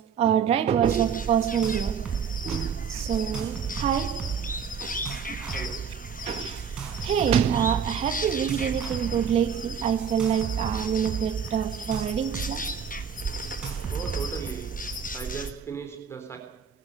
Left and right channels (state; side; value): quieter; left; 7.1 dB